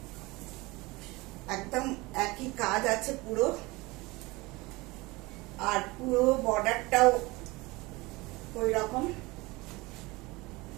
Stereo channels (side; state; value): left; quieter; 22.8 dB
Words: একদম একই কাজ আছে পুরো, আর পুরো বর্ডারটাও ওই রকম।